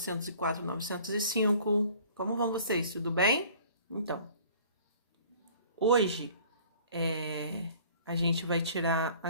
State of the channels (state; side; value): inverted; both; correlation -0.50